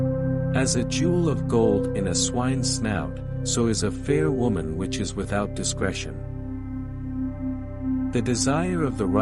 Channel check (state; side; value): identical; both; correlation 1.00